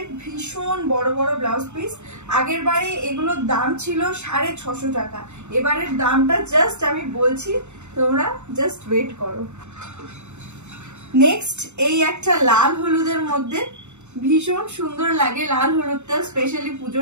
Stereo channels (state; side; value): late; left; 0.83 ms